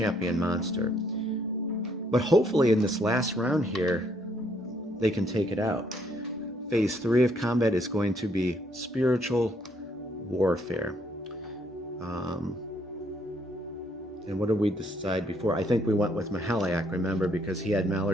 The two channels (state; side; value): normal; both; correlation 0.69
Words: monster. But hopefully in this last round here, they can take it out. Phase 3 of combat is going to be spiritual warfare. And what did we decide before? I think we went with Mahaliak, remember, because he had